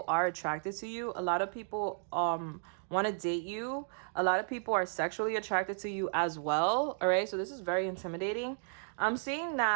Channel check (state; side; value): silent; left; digital silence